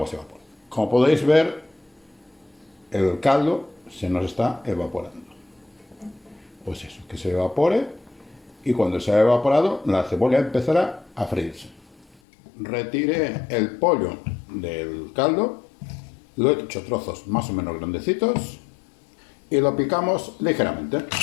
se evapora. Como podéis ver, el caldo se nos está evaporando. Pues eso, que se evapore, y cuando se ha evaporado, la cebolla empezará a freírse. Retiré el pollo del caldo, lo he hecho trozos más o menos grandecitos, y lo picamos ligeramente.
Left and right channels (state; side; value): drops out; right; at 12.2 s